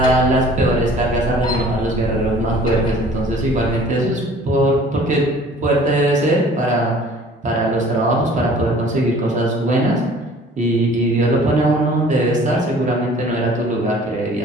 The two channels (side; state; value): both; normal; correlation 0.50